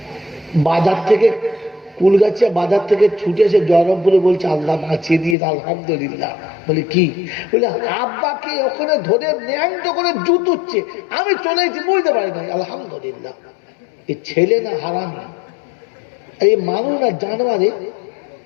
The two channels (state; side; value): drops out; right; at 5.4 s